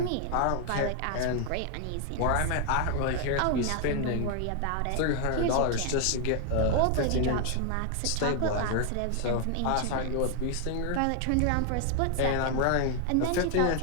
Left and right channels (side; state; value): both; different; correlation 0.00